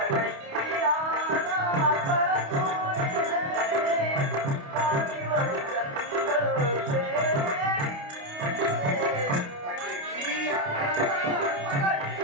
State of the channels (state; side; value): late; left; 28 ms